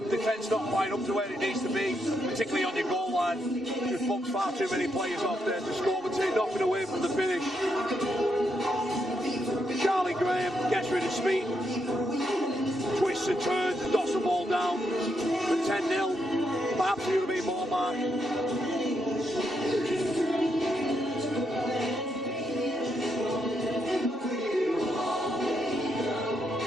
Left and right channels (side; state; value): both; normal; correlation 0.80